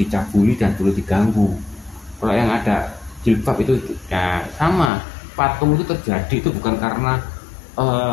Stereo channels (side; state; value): right; drops out; at 4.9 s